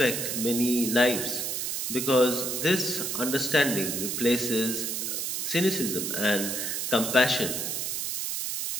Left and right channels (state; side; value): noise; right; hiss, 2 dB below the sound